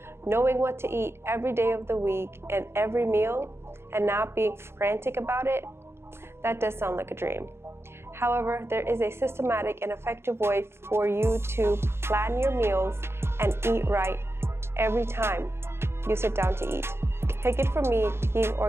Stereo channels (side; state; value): left; late; 0.12 ms